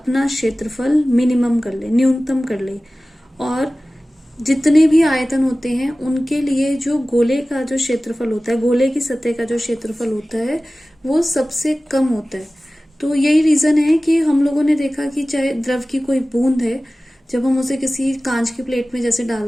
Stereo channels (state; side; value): normal; both; correlation 0.97